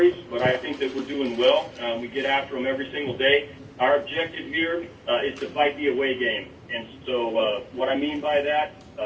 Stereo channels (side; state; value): both; identical; correlation 1.00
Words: but I think that we're doing well. We get after them every single day. Our objective here is to fight the away game. And so what I mean by that